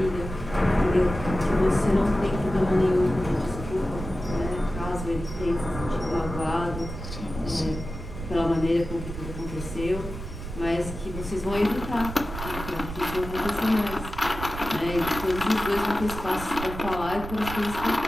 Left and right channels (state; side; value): noise; right; rumble, 9 dB below the sound